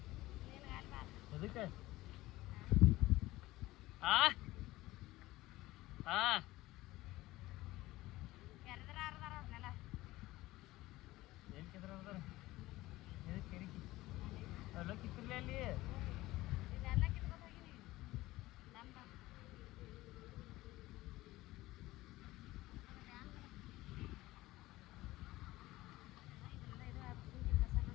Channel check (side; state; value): right; quieter; 18.0 dB